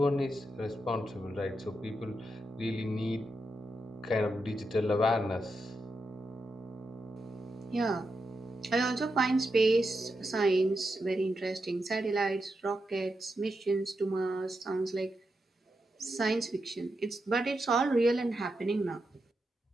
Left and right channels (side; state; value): both; normal; correlation 0.86